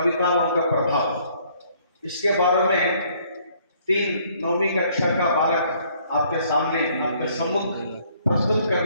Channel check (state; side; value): inverted; both; correlation -0.63